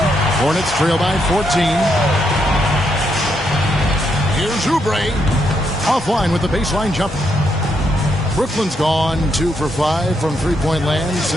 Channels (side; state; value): both; normal; correlation 0.78